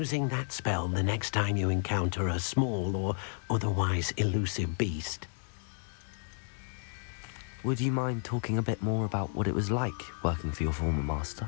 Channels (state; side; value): silent; right; 56 dB below the other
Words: that spell the next time you encounter a small or otherwise elusive beast. Would you mind talking a bit more about what it was like working for your former